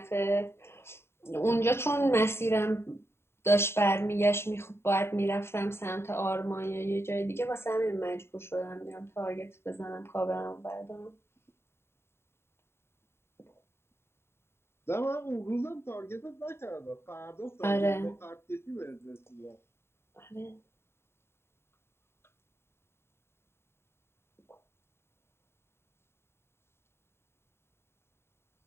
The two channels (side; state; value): right; late; 0.12 ms